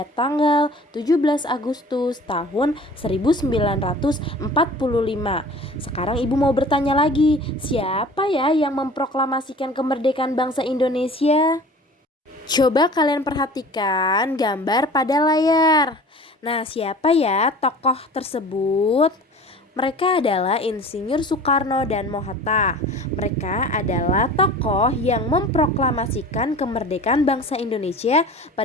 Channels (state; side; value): normal; both; correlation 0.42